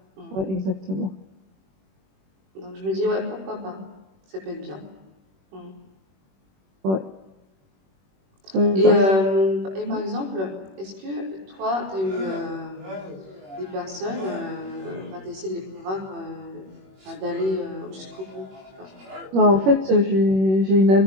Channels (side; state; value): left; late; 21 ms